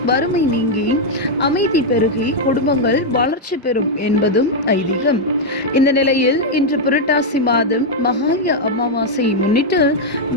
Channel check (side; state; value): both; normal; correlation -0.01